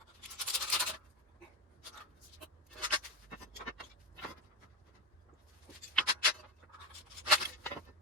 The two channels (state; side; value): normal; both; correlation 0.15